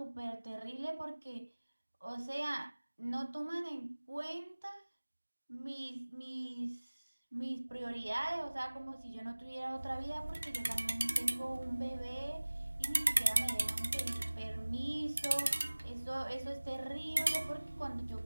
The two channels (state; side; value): inverted; both; correlation -1.00